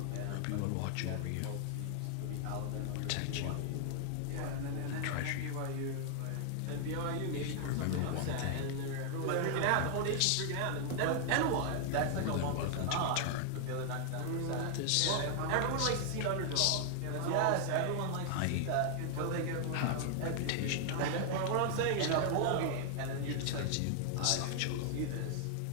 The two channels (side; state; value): both; different; correlation 0.00